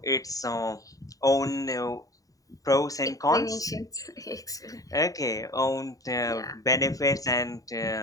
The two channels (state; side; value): late; right; 0.17 ms